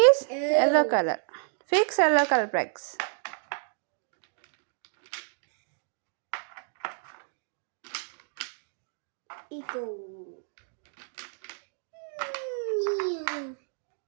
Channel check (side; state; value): left; silent; 58 dB below the other